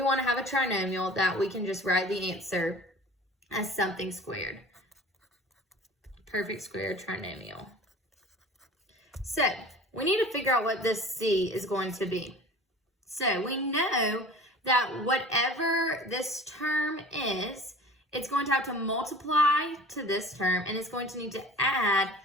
want to have a trinomial that we can just write the answer as something squared. Perfect square trinomial. So we need to figure out what this C is going to be. So we know that whatever this term is, it's going to have to multiply to this term, and it's going to need to add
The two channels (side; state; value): both; normal; correlation 0.42